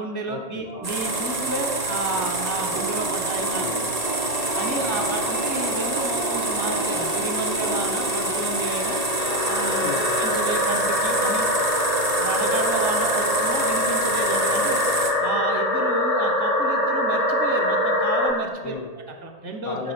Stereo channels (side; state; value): right; late; 1.8 ms